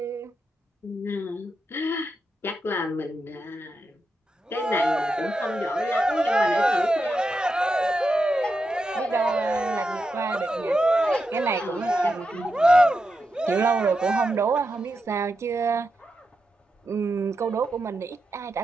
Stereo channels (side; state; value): both; normal; correlation 0.87